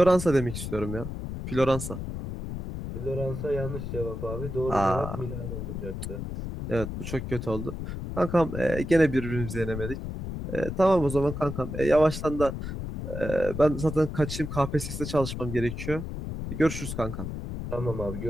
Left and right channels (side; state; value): left; noise; rumble, 6 dB below the sound